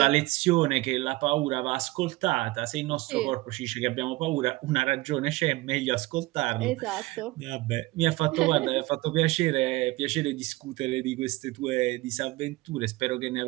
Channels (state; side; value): quieter; left; 20.5 dB